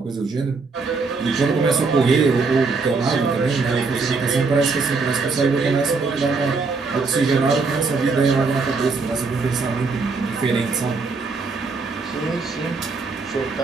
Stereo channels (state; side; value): quieter; left; 4.3 dB